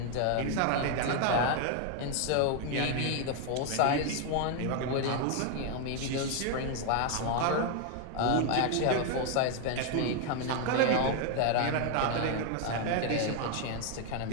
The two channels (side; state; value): both; different; correlation 0.01